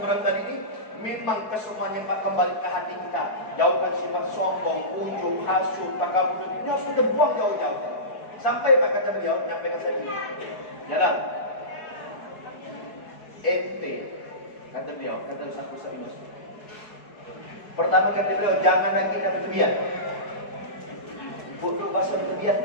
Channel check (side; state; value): right; late; 4.7 ms